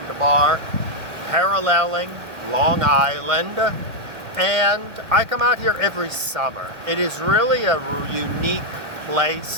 paralleling Long Island, and I come out here every summer. It is really a unique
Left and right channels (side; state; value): left; late; 2.0 ms